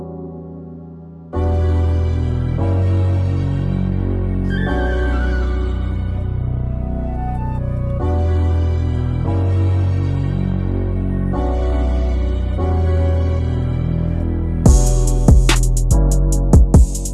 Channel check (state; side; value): identical; both; correlation 1.00